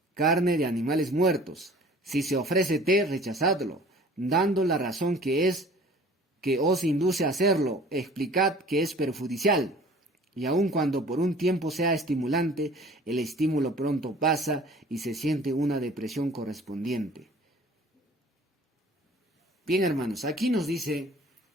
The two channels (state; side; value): normal; both; correlation 0.48